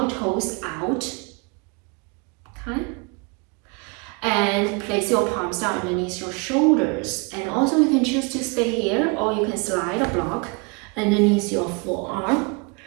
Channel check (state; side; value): quieter; left; 31.3 dB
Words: toes out. Okay? And place your palms down underneath your shoulders. And also you can choose to stay here, or you can slide a block underneath your forearm.